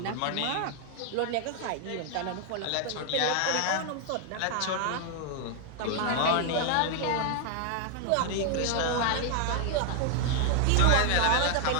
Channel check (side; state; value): both; different; correlation 0.00